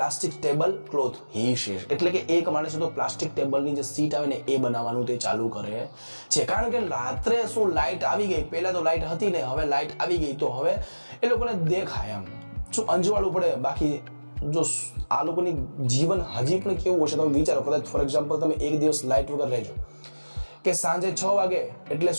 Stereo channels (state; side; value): inverted; both; correlation -1.00